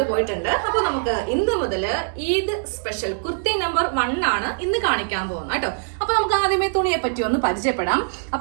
പോയിട്ടുണ്ട്. അപ്പൊ നമുക്ക് ഇന്ന് മുതല് ഈദ് സ്പെഷ്യൽ കുർത്തി നമ്പർ 1 ആണ് ഇന്ന് കാണിക്കാൻ പോകുന്നത് കേട്ടോ. അപ്പൊ നമുക്ക് ആദ്യമേ തുണിയെ പറ്റി ഒന്ന് പരിചയപ്പെടാം.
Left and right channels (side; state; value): left; silent; 62 dB below the other